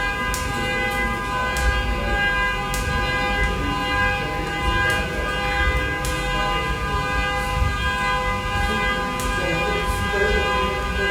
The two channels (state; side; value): identical; both; correlation 1.00